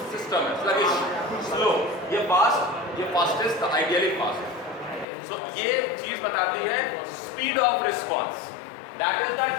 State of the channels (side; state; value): right; drops out; at 5.1 s